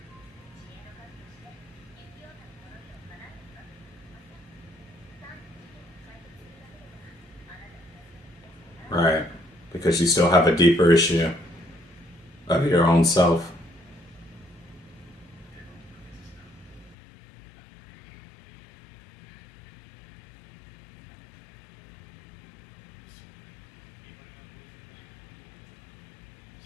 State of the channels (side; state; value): right; drops out; at 16.9 s